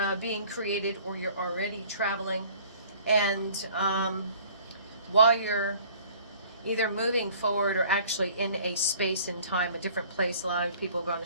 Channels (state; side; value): inverted; both; correlation -0.52